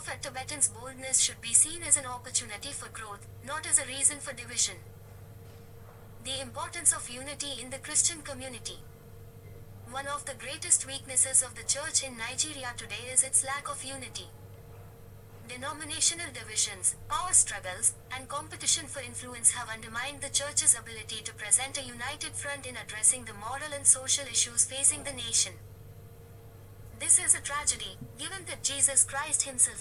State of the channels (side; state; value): both; identical; correlation 1.00